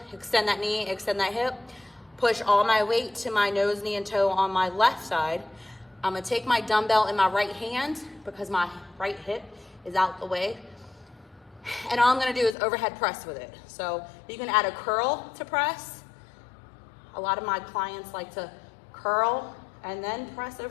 extend that knee, extend that hip, push all my weight to my nose, knee, and toe on my left side. I'm gonna take my dumbbell in my right hand because my right hip is out the way. And all I'm gonna do is overhead press with it. So you can add a curl to press. A lot of my clients like to curl and then press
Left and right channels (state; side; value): drops out; right; at 12.6 s